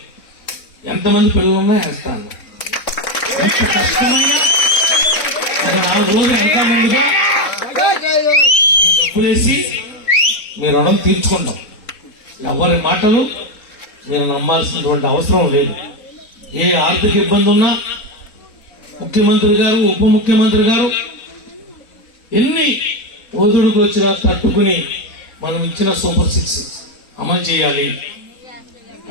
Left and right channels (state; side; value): late; right; 4.0 ms